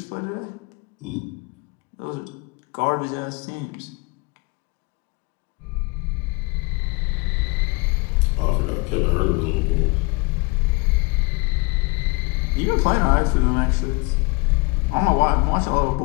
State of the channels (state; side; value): quieter; right; 27.3 dB